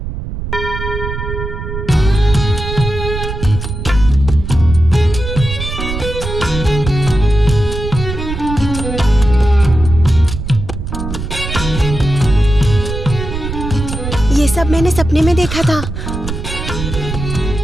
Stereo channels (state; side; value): noise; right; rumble, 6 dB below the sound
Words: ये सब मैंने सपने में देखा था।